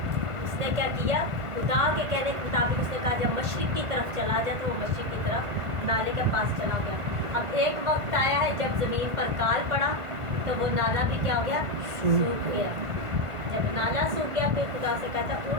उसने क्या किया, खुदा के कहने के मुताबिक उसने कहा जब मशरिक की तरफ चला जाए तो वो मशरिक की तरफ नाले के पास चला गया। अब एक वक्त आया है जब ज़मीन पर काल पड़ा तो वो नाला भी क्या हो गया, सूख गया। जब नाला सूख गया फिर खुदा से कहता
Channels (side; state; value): left; late; 1.5 ms